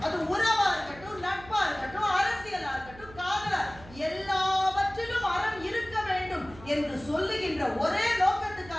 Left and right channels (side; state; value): right; noise; hum, 19 dB below the sound